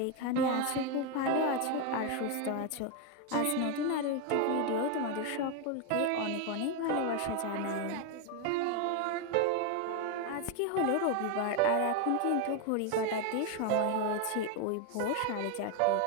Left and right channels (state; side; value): different; both; correlation 0.01